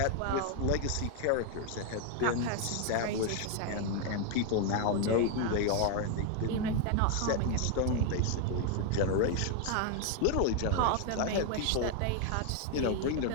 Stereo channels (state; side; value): different; both; correlation 0.00